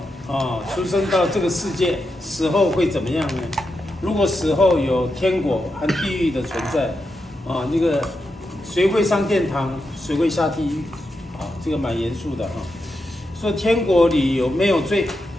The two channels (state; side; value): normal; both; correlation 0.86